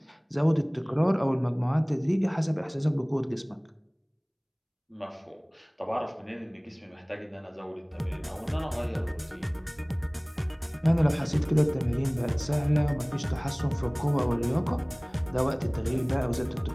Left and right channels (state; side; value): identical; both; correlation 1.00